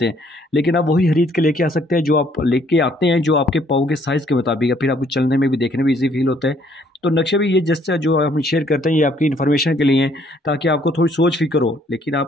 हैं, लेकिन आप वही खरीद के लेके आ सकते हैं जो आप लेके आते हैं, जो आपके पाँव के साइज़ के मुताबिक है। फिर आपको चलने में भी, देखने में ईजी फील होता है। तो नक्शे भी ये जैसे जो हम शेयर करते हैं ये आपकी इन्फॉर्मेशन के लिए हैं, ताकि आपको थोड़ी सोच फिक्र हो, लेकिन आप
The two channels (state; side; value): normal; both; correlation 0.65